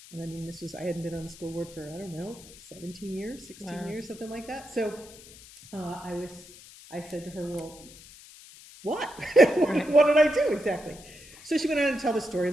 And I mean, I hadn't been on the school board for, I don't know, 17 years, 16 years, something like that. So I said to her, well, what? What did I do exactly? So she went on to tell the story.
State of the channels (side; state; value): left; noise; hiss, 19 dB below the sound